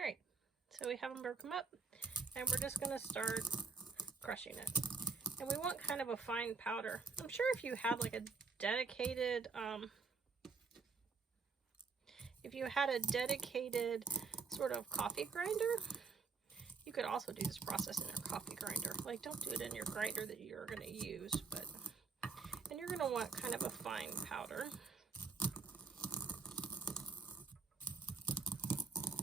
right, so we have them broken up, and we're just going to start crushing it. And we want kind of a fine powder. I'm sure if you had like a dedicated sort of coffee grinder, you could also do this process in your coffee grinder. Like, don't do it in your grinder that you're going to use, and you're you're going to want kind of a fine powder.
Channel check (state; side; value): quieter; left; 4.7 dB